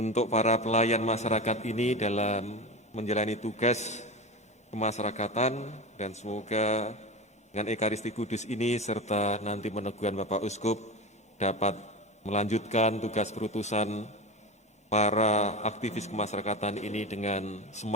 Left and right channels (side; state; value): both; normal; correlation 0.24